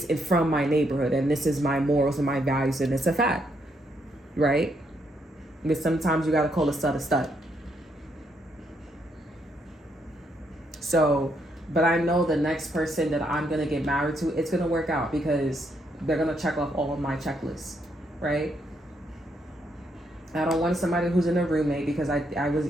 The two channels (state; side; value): normal; both; correlation 0.75